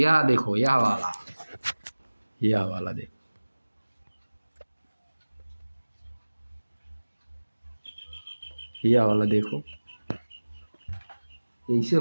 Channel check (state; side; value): inverted; both; correlation -1.00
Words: देखो, यह वाला देखो, यह वाला देखो, ऐसे